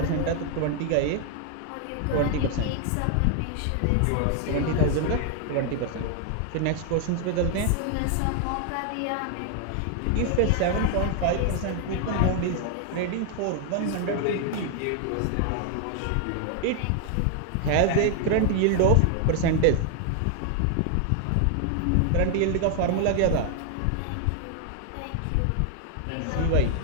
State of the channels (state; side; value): different; both; correlation 0.00